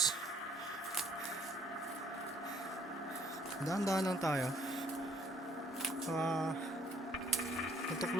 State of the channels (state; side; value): normal; both; correlation 0.61